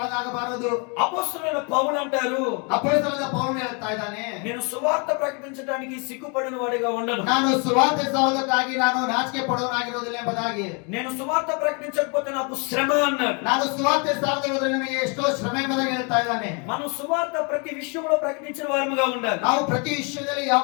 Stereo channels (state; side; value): quieter; right; 34.3 dB